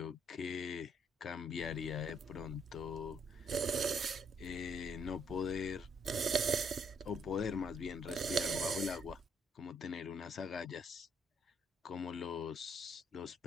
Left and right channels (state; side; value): normal; both; correlation 0.70